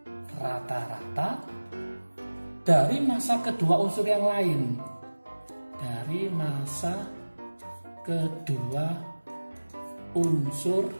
rata-rata dari massa kedua unsur yang lain. Dari massa kedua unsur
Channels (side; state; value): both; inverted; correlation -1.00